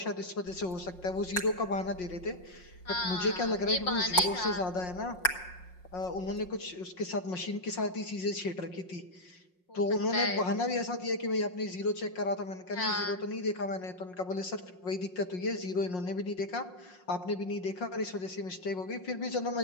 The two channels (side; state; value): right; late; 5.5 ms